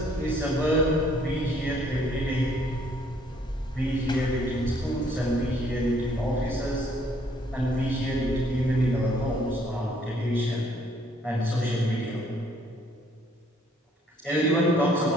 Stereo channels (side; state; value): both; normal; correlation 0.64